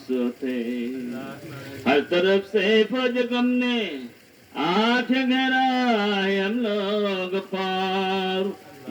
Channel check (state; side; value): identical; both; correlation 1.00